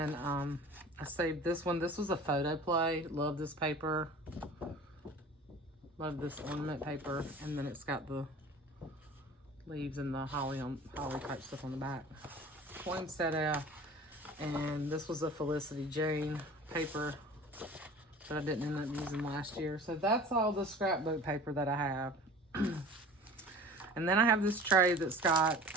I saved this one. This was a photo play. Love this paper. Love this ornament paper. And then it's got the leaves and the holly type stuff on the back. Poinsettia. And this was a Felicity Jane paper that I didn't end up using last year. So that's all the scrapbook paper that I have. And then I have this tray that's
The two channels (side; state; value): both; normal; correlation 0.42